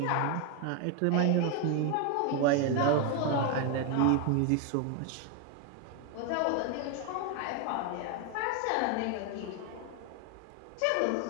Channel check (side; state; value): both; different; correlation 0.01